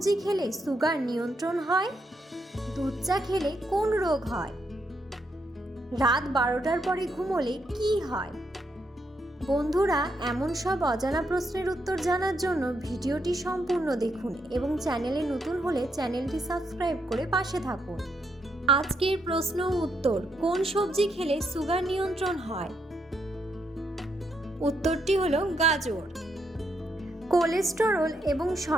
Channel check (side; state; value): both; normal; correlation 0.78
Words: খেলে সুগার নিয়ন্ত্রণ হয়? দুধ চা খেলে কোন রোগ হয়? রাত 12টার পরে ঘুমোলে কি হয়? বন্ধুরা, এমন সব অজানা প্রশ্নের উত্তর জানার জন্য ভিডিওটি সম্পূর্ণ দেখুন এবং চ্যানেলে নতুন হলে চ্যানেলটি সাবস্ক্রাইব করে পাশে থাকুন। আজকের প্রশ্ন উত্তর: কোন সবজি খেলে সুগার নিয়ন্ত্রণ হয়? উত্তরটি হলো গাজর। কোলেস্টেরল এবং